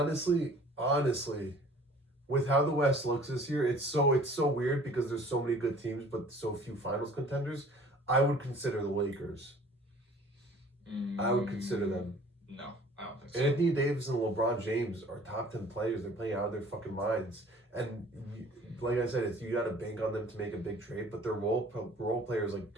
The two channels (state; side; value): normal; both; correlation 0.50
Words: with how the West looks this year, it's so weird because there's so many good teams but so few finals contenders. I would consider the Lakers. I would consider them. No, I don't think so. Anthony Davis and LeBron James are top 10 players. They're playing out of their fucking minds. And like I said, you got to bank on them to make a big trade. But their role players like